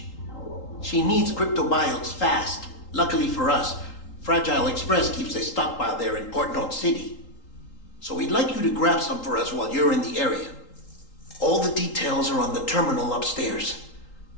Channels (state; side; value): late; right; 3.8 ms